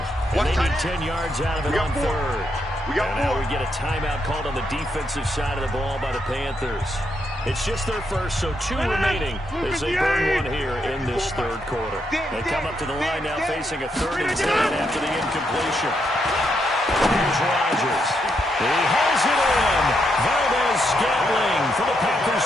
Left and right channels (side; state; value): both; normal; correlation 0.79